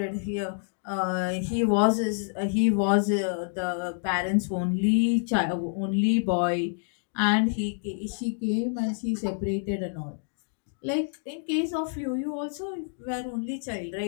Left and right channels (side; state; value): right; silent; digital silence